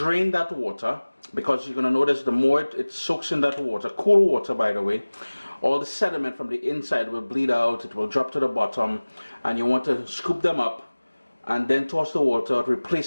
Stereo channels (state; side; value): inverted; both; correlation -1.00